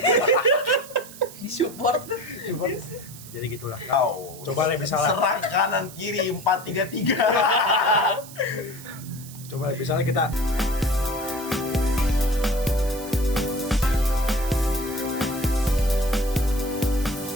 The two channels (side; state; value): right; noise; hiss, 16 dB below the sound